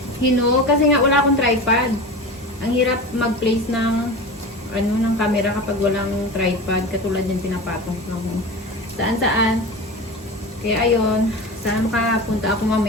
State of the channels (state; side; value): normal; both; correlation 0.30